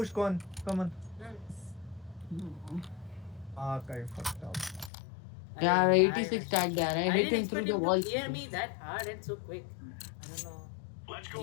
con. Come on. Ah, I fucked up. Yeah, 86 tagged there. I hit didn't him through expect the him wall. to clear me that hard and so quick. I don't know. Let's go.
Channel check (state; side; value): drops out; right; at 4.9 s